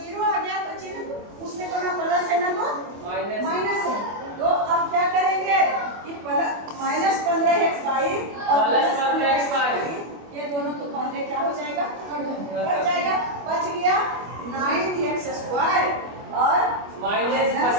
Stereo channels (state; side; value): late; left; 25 ms